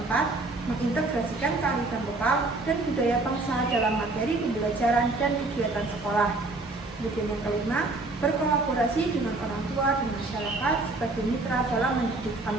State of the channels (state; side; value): quieter; left; 3.1 dB